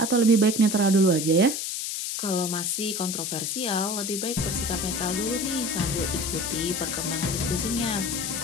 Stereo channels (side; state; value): left; noise; hiss, 3 dB below the sound